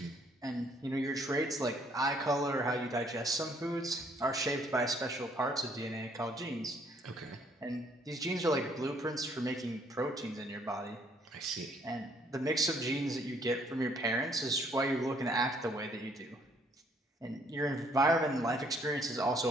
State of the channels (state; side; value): normal; both; correlation 0.65